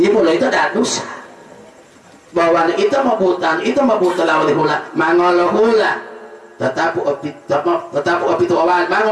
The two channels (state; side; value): identical; both; correlation 1.00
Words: ibu lo itu ada dosa bahwa itu mau buta lawali hula mangolo hula tetapu itu awal